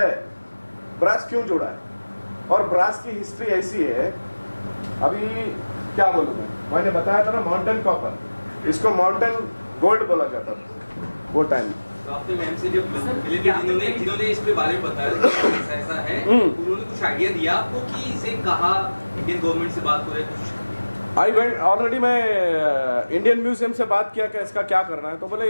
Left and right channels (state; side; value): inverted; both; correlation -1.00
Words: ब्रास क्यों जुड़ा है? और ब्रास की हिस्ट्री ऐसी है, अभी क्या बोलूं मैंने बताया था ना, माउंटेन कॉपर, इसको माउंटेन गोल्ड बोला जाता था वो टाइम। तो आपने मैम से जब मिले थे, जिन्होंने इस पे बारे में बताया कि ऐसा है, उन्होंने कुछ आइडिया दिया आपको कि इसे कहा इंडियन गवर्नमेंट से बात हो रही है कुछ? आई वेंट ऑलरेडी, मैं इंडियन म्यूजियम से बात किया कि इसका क्या करना है, तो बोले